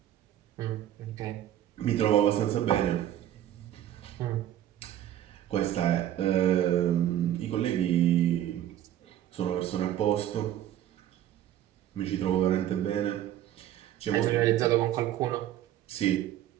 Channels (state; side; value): quieter; left; 11.9 dB